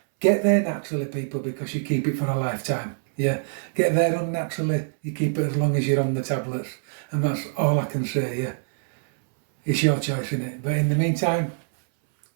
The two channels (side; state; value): left; silent; 62 dB below the other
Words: Get there naturally, people, because you keep it for a lifetime, yeah. Get there unnaturally, you keep it as long as you're on the tablets, and that's all I can say, yeah. It's your choice, innit? But in the meantime,